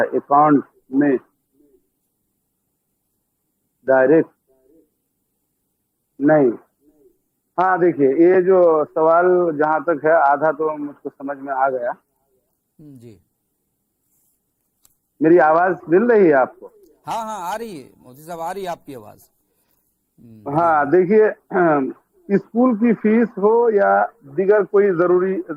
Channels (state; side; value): identical; both; correlation 1.00